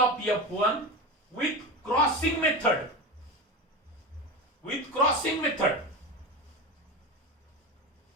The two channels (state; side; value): normal; both; correlation 0.24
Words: F1 with crossing method. With crossing method.